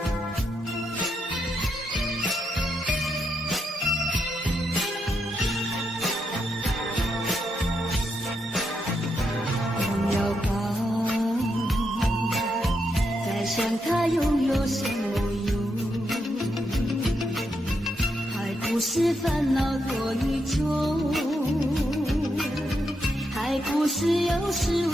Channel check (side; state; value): both; normal; correlation 0.81